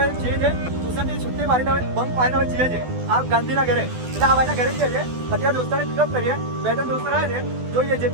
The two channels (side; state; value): left; late; 12 ms